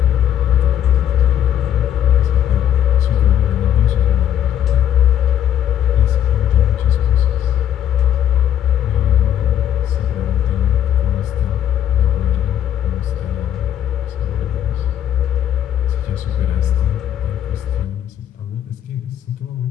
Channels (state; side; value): quieter; right; 10.3 dB